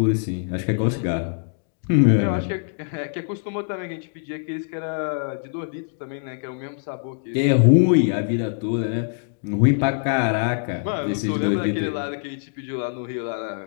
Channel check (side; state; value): right; silent; digital silence